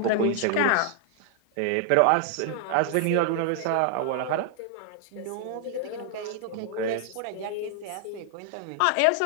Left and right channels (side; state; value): both; different; correlation 0.00